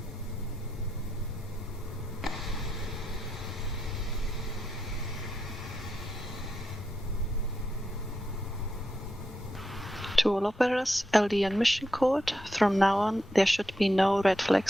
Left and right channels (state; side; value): normal; both; correlation 0.84